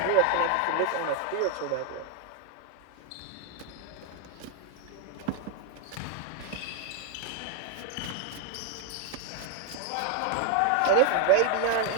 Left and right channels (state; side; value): different; both; correlation 0.01